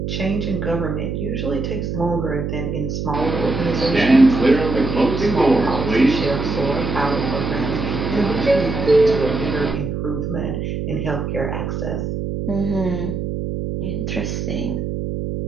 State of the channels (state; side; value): noise; right; hum, 3 dB below the sound